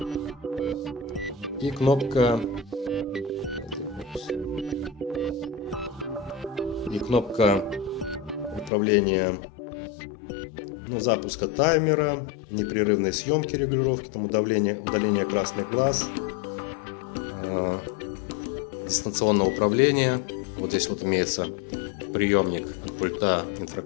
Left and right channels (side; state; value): right; drops out; at 8.7 s